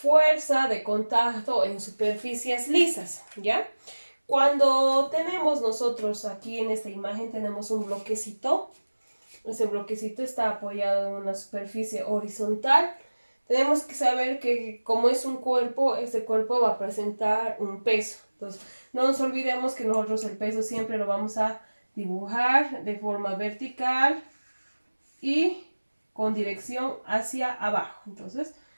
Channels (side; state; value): both; inverted; correlation -1.00